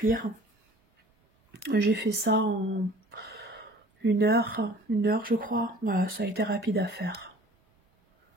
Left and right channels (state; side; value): normal; both; correlation 0.49